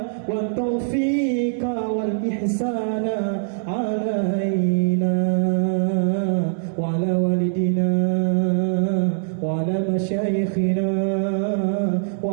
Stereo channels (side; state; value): left; silent; digital silence